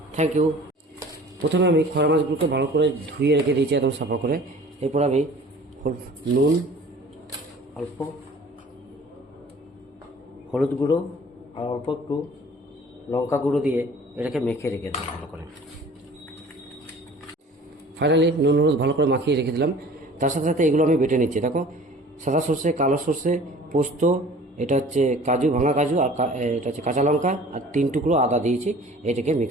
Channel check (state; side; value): normal; both; correlation 0.46